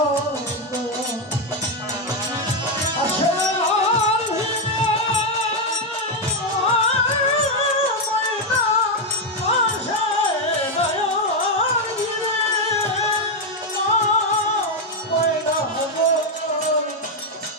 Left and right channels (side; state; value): both; normal; correlation 0.04